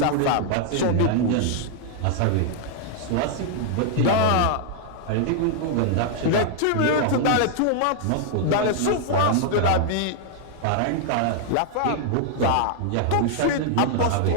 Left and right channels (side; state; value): both; different; correlation 0.00